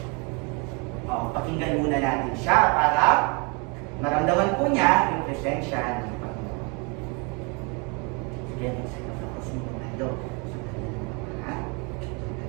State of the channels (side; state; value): left; quieter; 32.5 dB